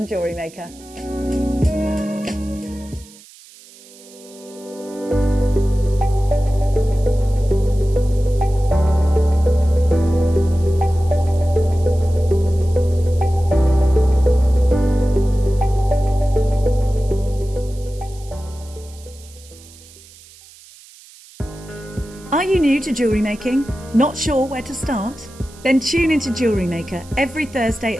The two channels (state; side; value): noise; right; hiss, 23 dB below the sound